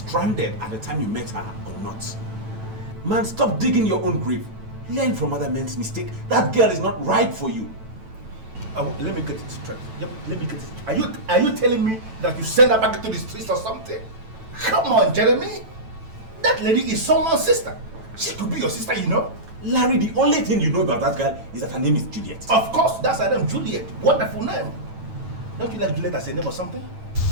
at the time you met her or not. Man, stop digging your own grave. Learn from other men's mistakes. That girl is not right for you. Let me get it straight. Let me get it straight. Are you telling me that you send her back into the streets or something? Come on, Jeremy. That lady is someone's sister. She could be your sister, you know. Larry, the only thing you know about that girl is that her name is Juliet. Of course, that's her name, Juliet. Wonderful name. Don't you like Juliet as a name or something?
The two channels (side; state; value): left; late; 9.1 ms